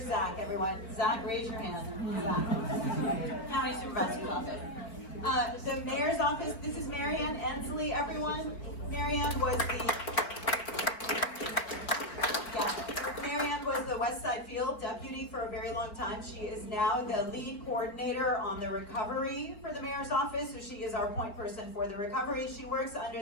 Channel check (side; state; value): right; late; 4.2 ms